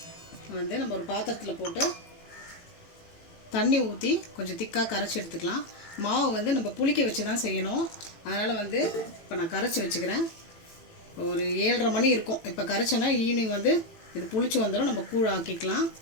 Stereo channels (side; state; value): right; late; 18 ms